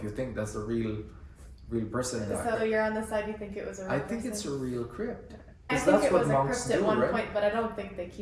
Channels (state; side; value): identical; both; correlation 1.00